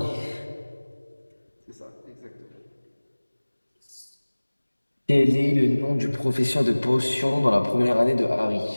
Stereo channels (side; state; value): both; inverted; correlation -1.00